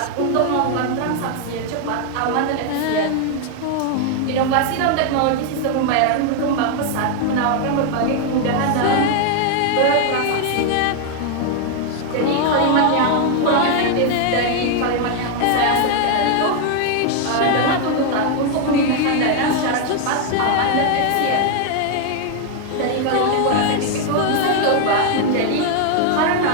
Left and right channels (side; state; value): both; different; correlation 0.00